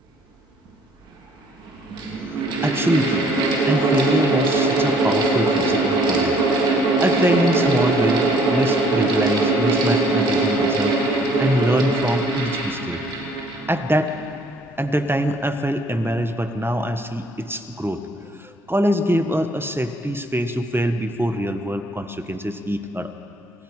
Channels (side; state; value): both; normal; correlation 0.61